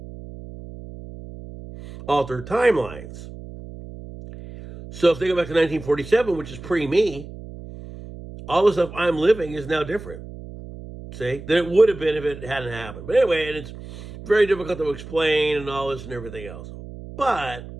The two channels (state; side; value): noise; right; hum, 14 dB below the sound